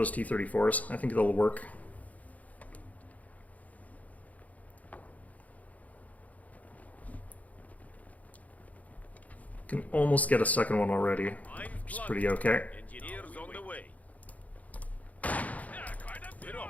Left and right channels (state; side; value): late; right; 0.073 ms